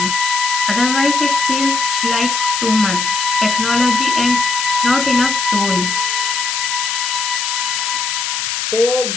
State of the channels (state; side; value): noise; left; hiss, 2 dB below the sound